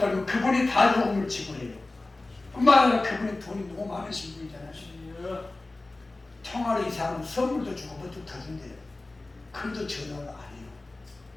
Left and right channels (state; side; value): quieter; right; 3.1 dB